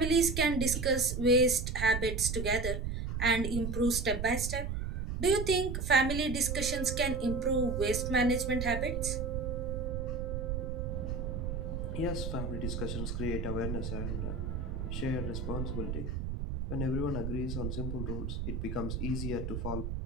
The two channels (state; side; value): noise; right; rumble, 3 dB below the sound